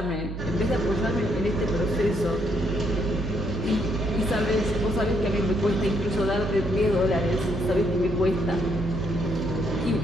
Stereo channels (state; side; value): noise; right; hum, 7 dB below the sound